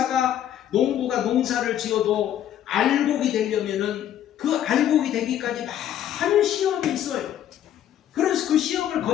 농사를 지어도 알곡이 되려면은 그 알곡이 되기까지 많은 시험이 있어요. 그래서 그 시험을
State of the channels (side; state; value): right; quieter; 10.9 dB